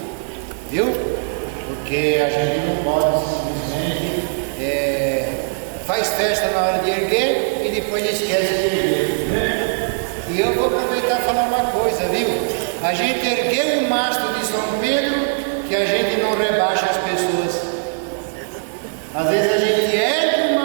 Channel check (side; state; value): left; silent; 66 dB below the other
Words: Viu? Porque a gente não pode simplesmente faz festa na hora de erguer e depois esquece de erguer, né? E eu vou aproveitar e falar uma coisa, viu? A gente ergueu o mastro de São Pedro, que a gente não rebaixa as pessoas. Às vezes a gente ergue o